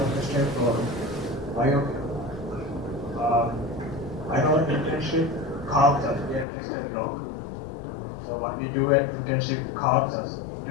question for bio? I know internship carves us, we have tested log. So what we do at internship carves us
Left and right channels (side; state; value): right; drops out; at 6.5 s